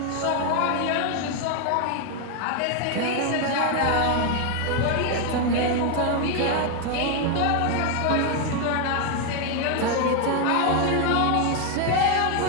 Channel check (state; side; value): different; both; correlation 0.01